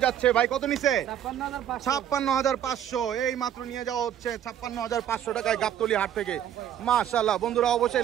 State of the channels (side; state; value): left; quieter; 10.2 dB